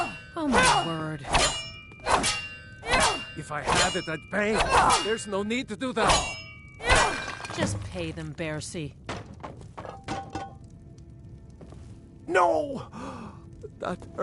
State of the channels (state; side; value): identical; both; correlation 1.00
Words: Oh my word. If I had it, I'd pay. There's no need to do that. Just pay them, Bercy. No! That